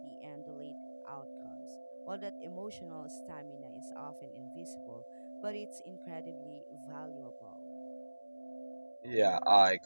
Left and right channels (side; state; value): both; inverted; correlation -1.00